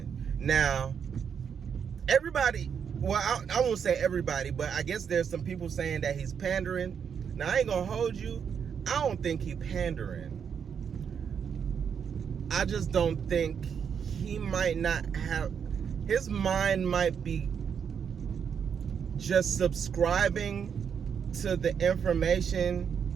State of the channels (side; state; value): left; quieter; 7.3 dB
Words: Now, everybody, well, I won't say everybody, but I guess there's some people saying that he's pandering. Now, I ain't gonna hold you. I don't think he's pandering. I just don't think he might not have, his mind might be just subscribing to the